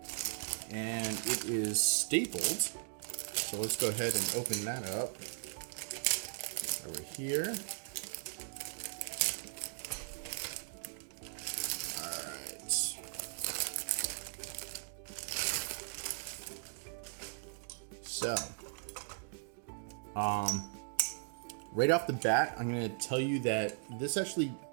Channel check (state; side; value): silent; left; digital silence